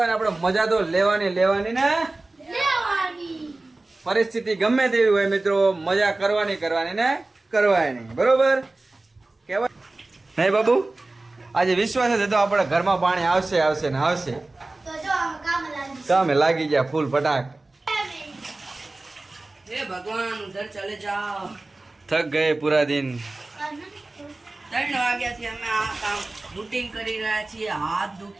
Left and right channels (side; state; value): left; quieter; 3.0 dB